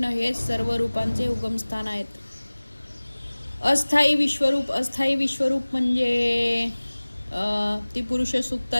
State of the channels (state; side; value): inverted; both; correlation -1.00